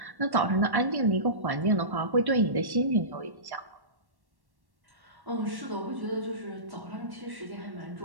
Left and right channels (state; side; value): late; left; 1.1 ms